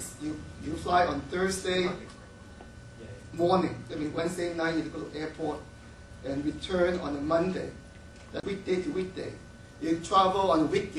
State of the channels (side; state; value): both; identical; correlation 1.00